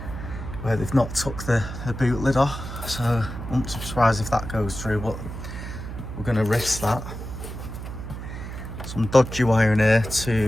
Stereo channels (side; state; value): right; noise; hum, 8 dB below the sound